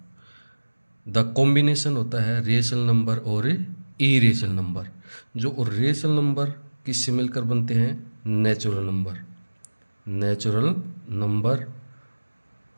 The combination होता है रेशनल नंबर और इरेशनल नंबर। जो रेशनल नंबर किससे मिलकर बनते हैं, natural number, natural number,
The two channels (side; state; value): both; inverted; correlation -1.00